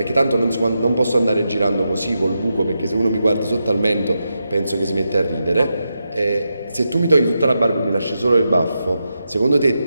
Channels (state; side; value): inverted; both; correlation -0.87